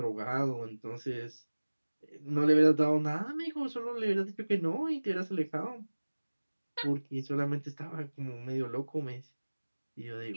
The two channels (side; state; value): both; inverted; correlation -1.00